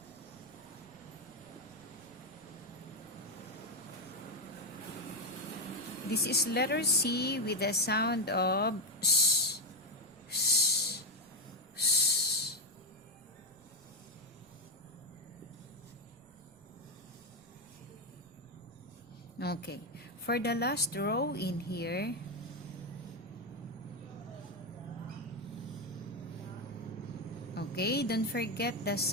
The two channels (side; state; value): right; noise; rumble, 28 dB below the sound